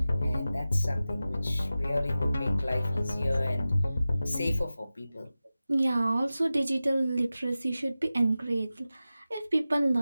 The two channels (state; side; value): inverted; both; correlation -0.95